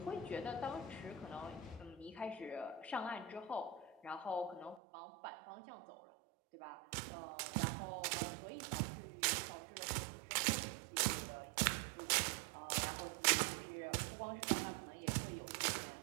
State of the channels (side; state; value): left; drops out; at 4.8 s